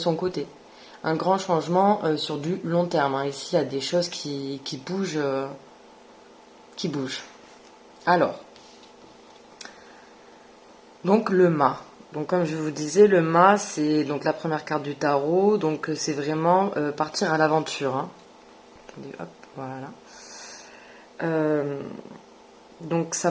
côté. Un grand changement sur du long terme. Ici, il y a des choses qui bougent. Qui bougent. Alors, donc le mât. Donc comme je vous disais, le mât, c'est donc la première carte du tarot. Donc c'est vraiment partir à l'aventure. Attendez, hop, voilà. Euh, donc ça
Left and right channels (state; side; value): identical; both; correlation 1.00